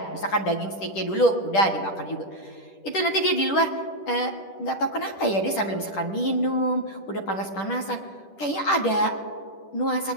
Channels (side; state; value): right; late; 10 ms